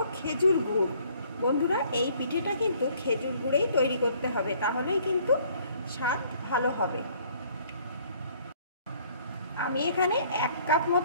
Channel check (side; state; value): both; inverted; correlation -0.59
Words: खेजुर गुड़। बंधुरा এই পিঠেটা কিন্তু খেজুর গুড়েই তৈরি করতে হবে, তাহলেই কিন্তু স্বাদ ভালো হবে। আমি এখানে 1 কাপ